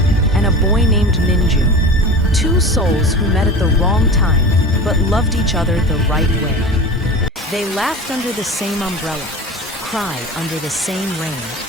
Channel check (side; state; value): both; normal; correlation 0.33